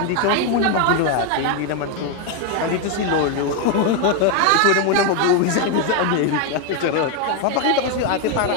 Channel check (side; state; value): both; different; correlation 0.01